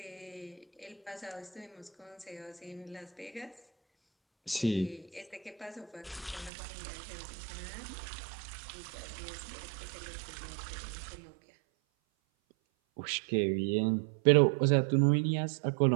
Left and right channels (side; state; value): left; drops out; at 6.5 s